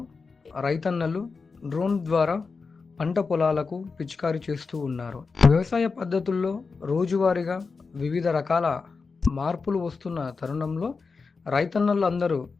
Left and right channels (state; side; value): quieter; right; 4.6 dB